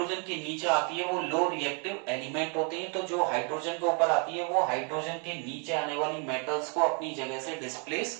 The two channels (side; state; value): left; quieter; 37.8 dB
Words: के नीचे आती है वो लो रिएक्टिव एलिमेंट होते हैं। तो जो हाइड्रोजन के ऊपर आती है वो हाइड्रोजन के नीचे आने वाली मेटल्स को अपनी जगह से